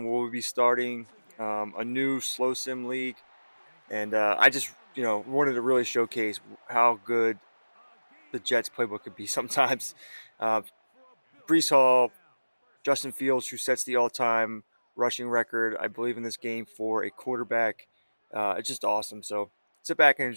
we'll be starting a new Slow Sim league. And I just wanted to really showcase how good the Jets playbook could be sometimes. Brees Hall, Justin Fields, who sets the all-time rushing record, I believe, in this game for a quarterback. It's just awesome. So sit back and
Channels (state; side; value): inverted; both; correlation -1.00